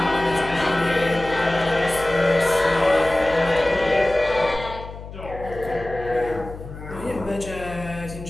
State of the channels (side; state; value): left; noise; hum, 13 dB below the sound